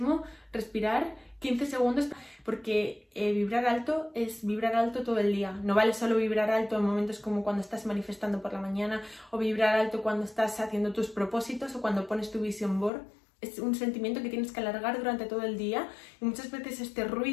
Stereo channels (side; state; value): right; drops out; at 12.9 s